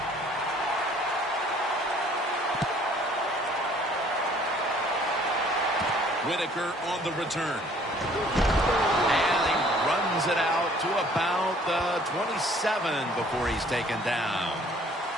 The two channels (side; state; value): both; normal; correlation 0.57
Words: Whitaker on the return. And he runs it out to about the 27 before he's taken down.